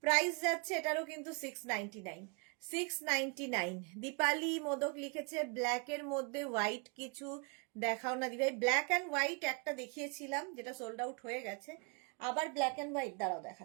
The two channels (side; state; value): left; quieter; 34.3 dB